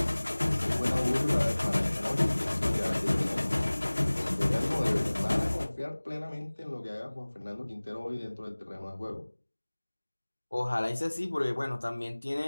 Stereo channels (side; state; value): both; inverted; correlation -1.00